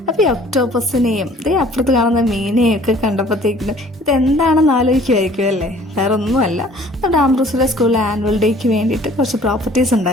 അപ്പോൾ ഈ ഒക്ടോപ്പസിനെയും അപ്പുറത്ത് കാണുന്ന മീനെയും ഒക്കെ കണ്ടപ്പോഴത്തേക്കിനും ഇതെന്താണെന്ന് ആലോചിക്കുമായിരിക്കും അല്ലേ? വേറെ ഒന്നുമല്ല, നമ്മുടെ ആംബ്രൂസിലെ സ്കൂളിലെ ആനുവൽ ഡേക്ക് വേണ്ടിയിട്ട് കുറച്ച് പ്രോപ്പർട്ടീസ്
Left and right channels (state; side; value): normal; both; correlation 0.53